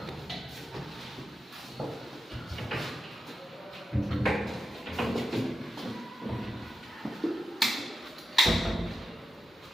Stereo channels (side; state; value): both; normal; correlation 0.90